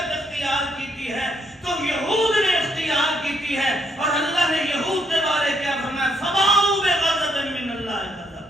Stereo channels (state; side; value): normal; both; correlation 0.72